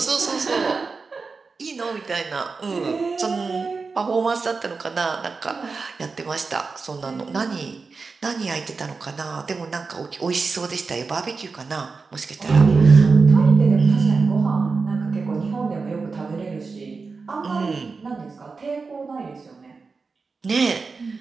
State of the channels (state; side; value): quieter; left; 4.5 dB